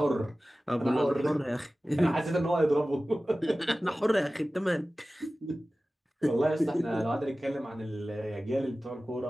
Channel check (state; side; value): normal; both; correlation 0.96